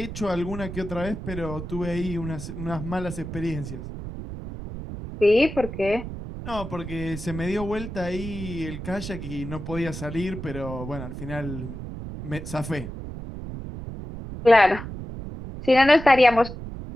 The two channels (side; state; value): right; noise; rumble, 9 dB below the sound